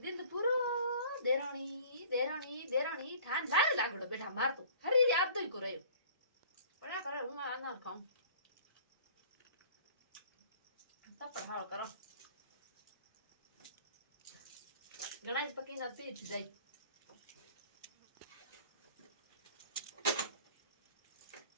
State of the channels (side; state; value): both; inverted; correlation -0.49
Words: दिन पूरो देरानी ठान लाल लागड़ो बेटा मार तो हरी याद तो ही को रयो पड़ा करे हूं आना खाऊं तब पढ़ाओ करो गणेश पकी ना पीठ जाई